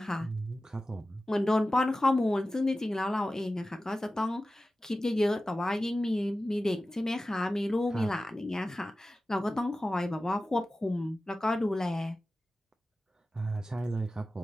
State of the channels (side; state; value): both; normal; correlation 0.95